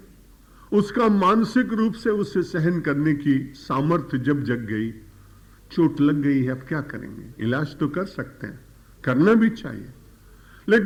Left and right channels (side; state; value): both; identical; correlation 1.00